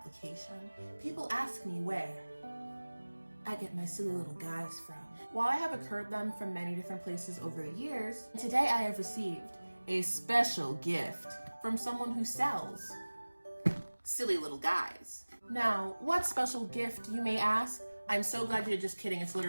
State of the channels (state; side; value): inverted; both; correlation -1.00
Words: people ask me where I get my silly little guys from. While I have occurred them from many different places over the years, today I have received a special gift from someone who sells silly little guys. Now, what special gift, you may ask? I'm so glad you're just kidding, it's